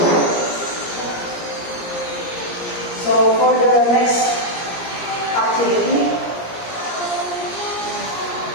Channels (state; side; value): late; right; 17 ms